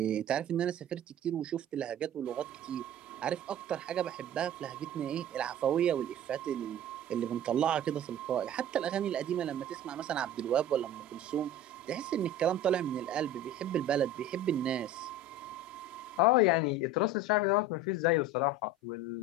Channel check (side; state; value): both; normal; correlation 0.36